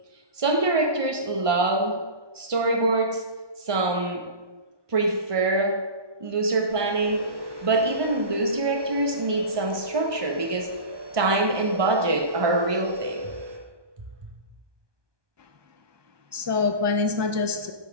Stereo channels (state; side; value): late; left; 1.2 ms